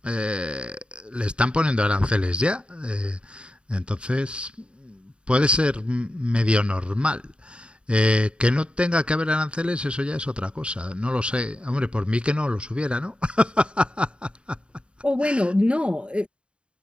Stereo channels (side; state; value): left; late; 0.055 ms